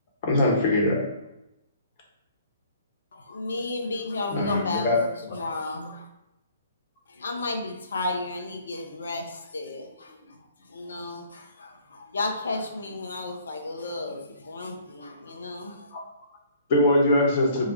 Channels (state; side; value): inverted; both; correlation -0.56